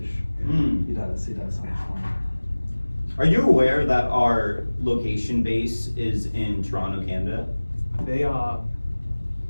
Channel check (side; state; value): both; inverted; correlation -1.00